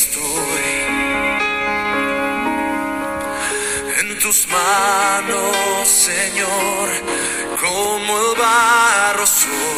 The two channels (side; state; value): both; identical; correlation 1.00